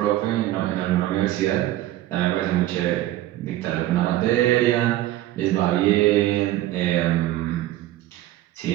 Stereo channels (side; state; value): left; quieter; 14.8 dB